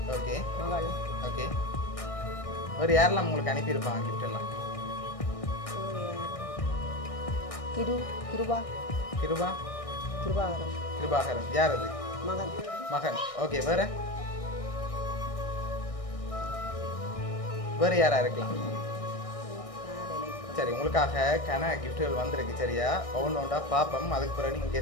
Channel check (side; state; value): right; late; 1.6 ms